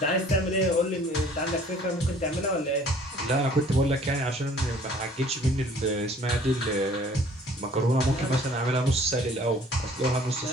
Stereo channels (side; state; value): both; normal; correlation 0.54